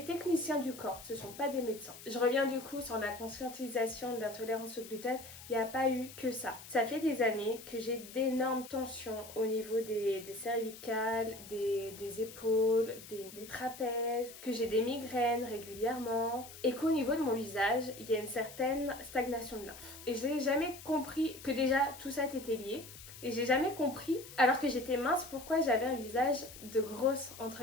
techniciens du corps, ce ne sont pas des médecins. Je reviens du coup sur la conscientisation de l'intolérance au gluten, il n'y a pas eu que ça. Ça fait des années que j'ai d'énormes tensions au niveau des cervicales, des épaules, des trapèzes, que j'ai des migraines régulièrement, et qu'au niveau de mon visage, il y a une certaine stagnation de lymphe. Et je n'ai jamais compris que déjà tout ça était lié. Et j'ai jamais compris, alors que j'étais mince, pourquoi j'avais un visage de grosse,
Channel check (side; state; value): left; noise; hiss, 15 dB below the sound